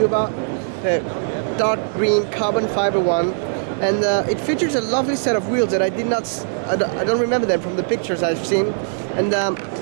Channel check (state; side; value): silent; left; digital silence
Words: about, the dark green carbon fiber one. And it features a lovely set of wheels that I don't remember them from the pictures I've seen. And